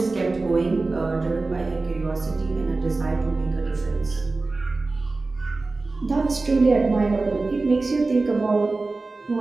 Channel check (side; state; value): left; quieter; 3.5 dB